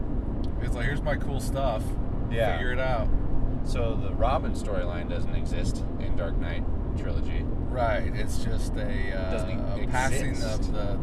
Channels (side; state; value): both; identical; correlation 1.00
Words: it's like, here's my cool stuff. Yeah, figure it out. So the Robin storyline doesn't exist in Dark Knight trilogy. Right, it's just a passing of